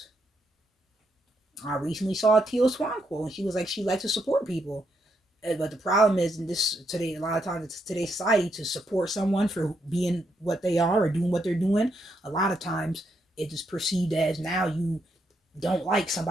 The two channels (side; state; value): both; normal; correlation 0.78